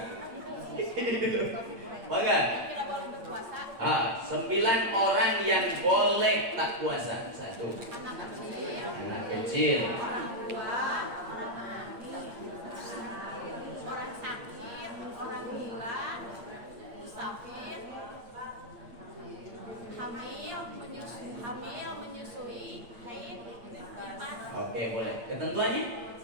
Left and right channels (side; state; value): left; late; 8.7 ms